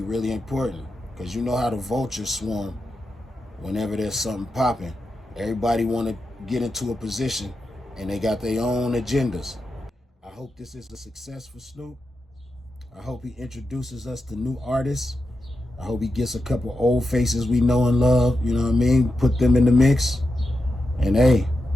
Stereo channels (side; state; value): both; normal; correlation 0.88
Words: really important. Because you know how the vultures swarm whenever there's something popping. Everybody want to get into a position and they got their own agendas. I hope this is a success for Snoop. I hope he introduces us to new artists. I hope he gets a couple old faces we know and love, you know what I mean? Put them in the mix. And hey,